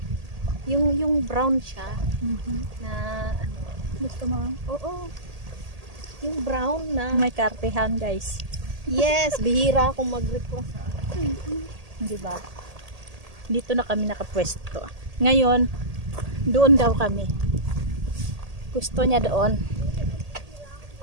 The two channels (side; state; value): left; late; 1.8 ms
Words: Yung brown siya na ano. Gusto mo? Oo. Yung brown na. May kartehan guys. Yes, bihira akong mag-request. Di ba? Dito na kami nakapwesto. Ngayon, doon daw kami. Gusto niya doon.